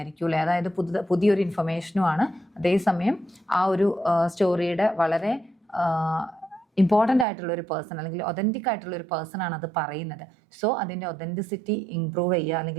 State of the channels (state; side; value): drops out; left; at 7.2 s